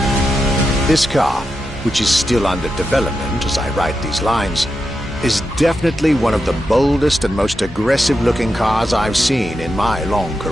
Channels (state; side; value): normal; both; correlation 0.87